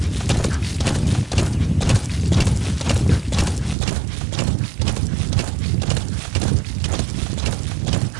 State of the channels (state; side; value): drops out; left; at 3.8 s